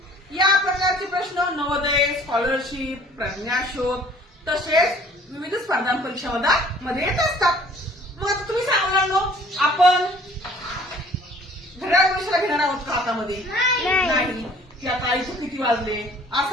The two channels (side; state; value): both; normal; correlation 0.53